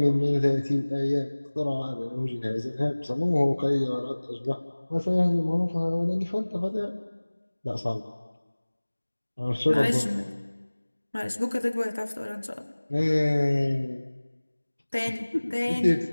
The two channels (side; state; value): both; inverted; correlation -1.00